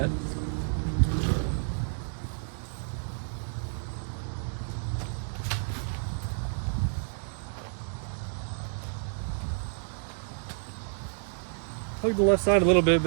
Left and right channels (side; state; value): left; silent; digital silence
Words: Plug the left side a little bit, but